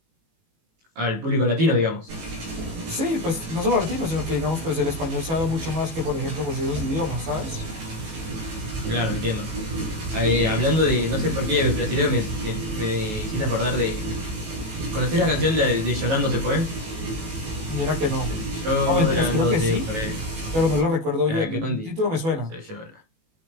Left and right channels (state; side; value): late; left; 18 ms